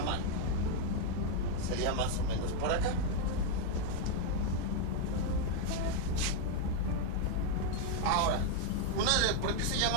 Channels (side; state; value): both; different; correlation 0.00